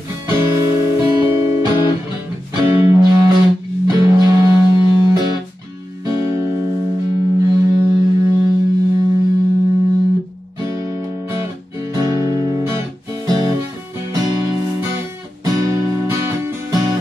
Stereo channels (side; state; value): both; normal; correlation 0.93